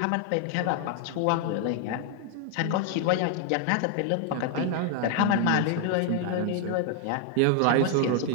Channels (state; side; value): different; both; correlation 0.00